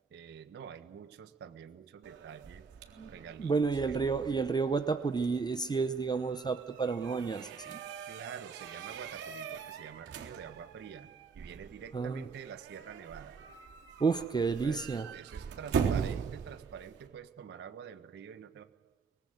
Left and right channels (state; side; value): quieter; left; 4.9 dB